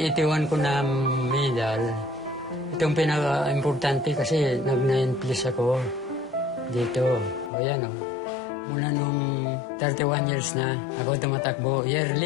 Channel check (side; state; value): right; drops out; at 7.5 s